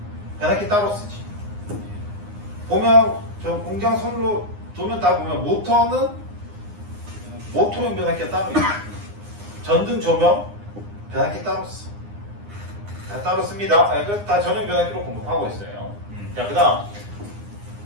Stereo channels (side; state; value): left; late; 9.8 ms